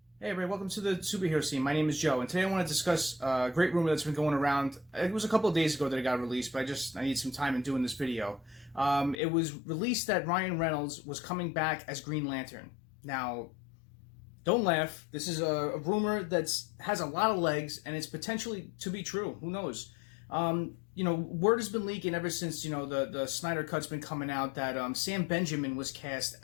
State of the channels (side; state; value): right; drops out; at 9.2 s